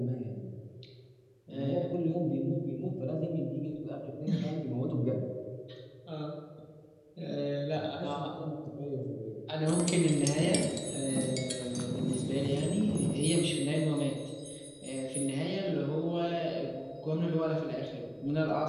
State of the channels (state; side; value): identical; both; correlation 1.00